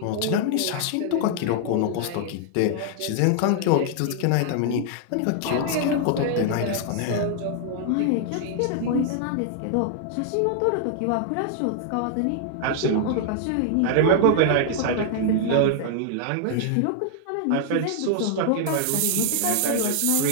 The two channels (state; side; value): different; both; correlation 0.00